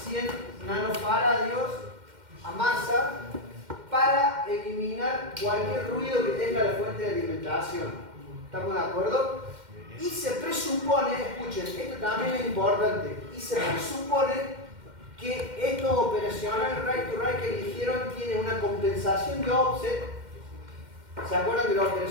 100 nanofaradios a masa para eliminar cualquier ruido que tenga la fuente de alimentación. ¿Estamos de acuerdo? Y se presupone, escuchen, esto también es importante, y se presupone que estos operacionales right to right que eligieron tienen una compensación de offset. ¿Se acuerdan que los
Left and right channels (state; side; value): late; left; 2.1 ms